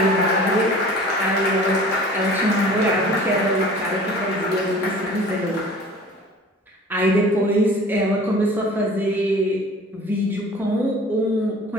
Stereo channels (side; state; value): both; normal; correlation 0.44